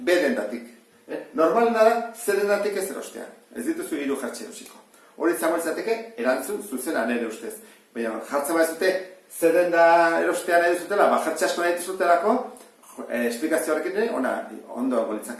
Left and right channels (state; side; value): identical; both; correlation 1.00